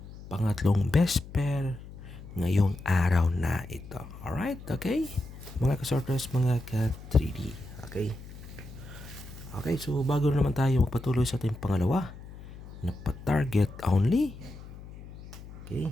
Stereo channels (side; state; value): left; noise; hum, 15 dB below the sound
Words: pangatlong best pair ngayong araw na ito. Alright, okay? Mga ka-Swartras, mga ka-3D. Okay? Okay, so bago naman tayo magpatuloy sa ating pangalawa na pa-target only,